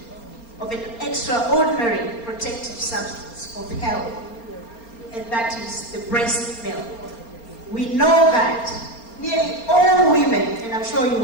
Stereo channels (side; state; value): right; late; 4.3 ms